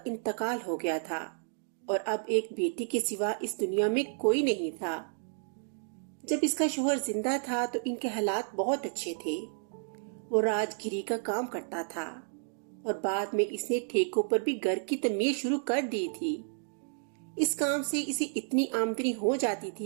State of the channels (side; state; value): left; silent; digital silence